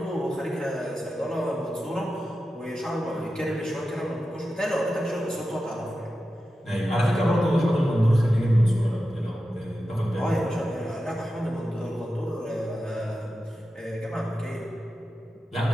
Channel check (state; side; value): normal; both; correlation 0.92